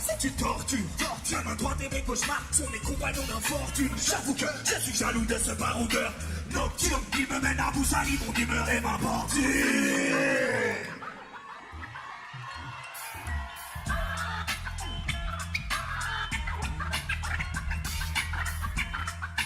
est une torture. Ma main droite et mes cauchemars sont mes compagnons d'infortune. J'avoue que je suis jaloux de ce baroudeur nocturne. Il me mène à bout sali, mon humeur et ma porture.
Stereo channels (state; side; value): identical; both; correlation 1.00